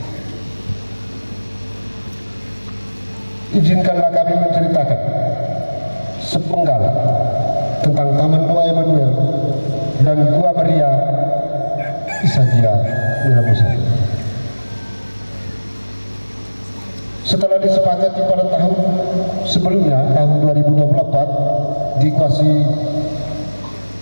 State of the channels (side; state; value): both; inverted; correlation -1.00